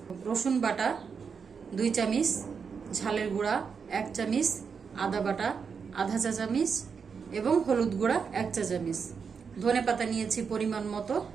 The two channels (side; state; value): left; quieter; 6.0 dB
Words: রসুন বাটা 2 চামচ, ঝালের গুঁড়া 1 চামচ, আদা বাটা আধা চা চামচ এবং হলুদ গুঁড়া 1 চা চামচ। ধনে পাতা নিয়েছি পরিমাণ মতো।